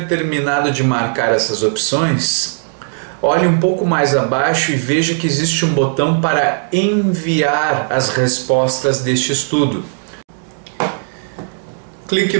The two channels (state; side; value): silent; left; 64 dB below the other